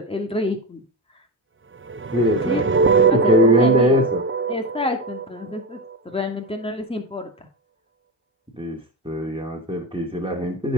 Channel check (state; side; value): normal; both; correlation 0.17